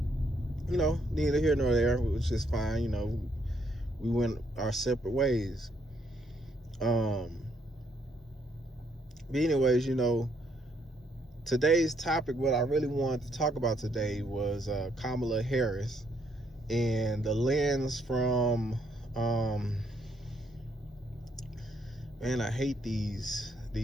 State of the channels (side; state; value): both; normal; correlation 0.72